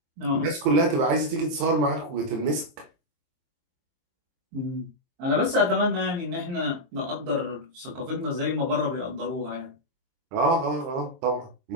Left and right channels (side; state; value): left; late; 23 ms